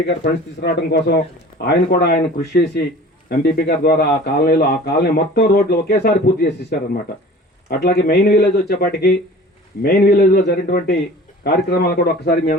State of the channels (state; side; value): normal; both; correlation 0.43